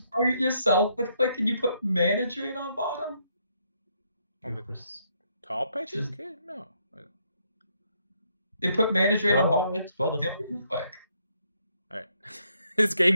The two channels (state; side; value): inverted; both; correlation -0.73